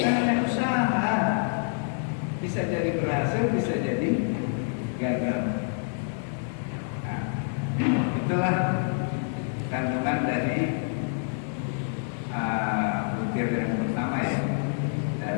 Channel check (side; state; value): right; silent; 60 dB below the other